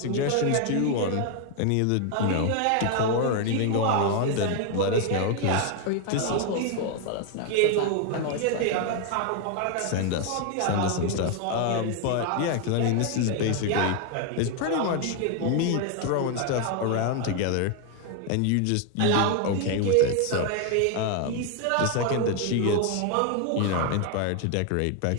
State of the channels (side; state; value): both; different; correlation 0.01